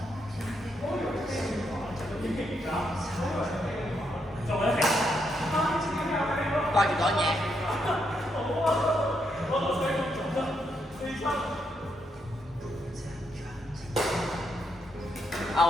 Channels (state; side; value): normal; both; correlation 0.79